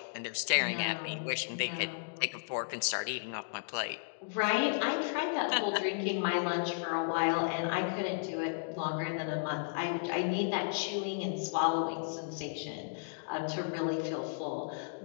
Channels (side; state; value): right; silent; digital silence